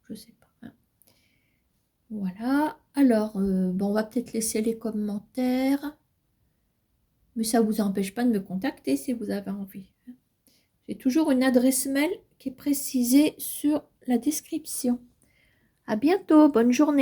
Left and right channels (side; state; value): both; identical; correlation 1.00